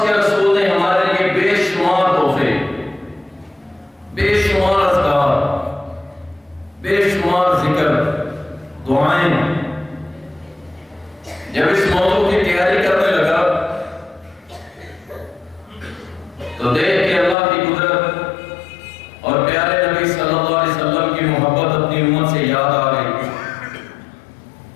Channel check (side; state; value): right; drops out; at 17.4 s